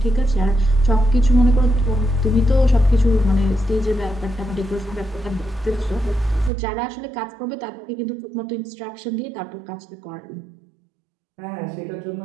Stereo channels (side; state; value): left; drops out; at 6.5 s